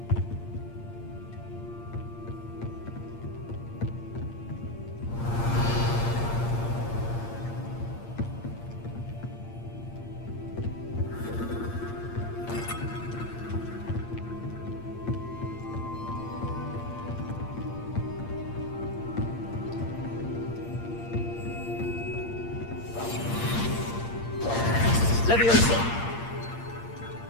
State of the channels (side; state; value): right; late; 8.7 ms